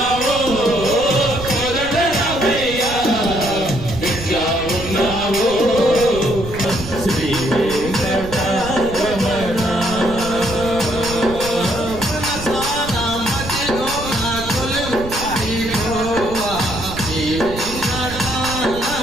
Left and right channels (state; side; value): noise; right; rumble, 10 dB below the sound